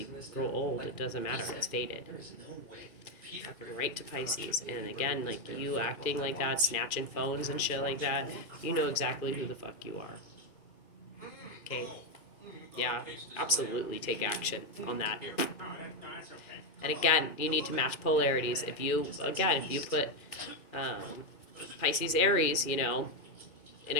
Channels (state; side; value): late; right; 2.3 ms